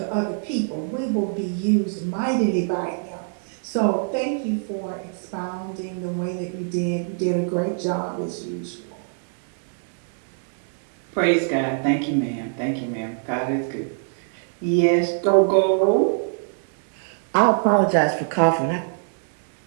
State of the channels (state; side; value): silent; left; digital silence